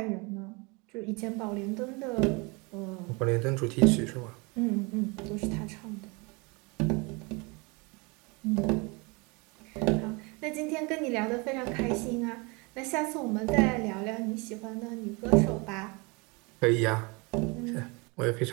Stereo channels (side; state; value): left; quieter; 28.5 dB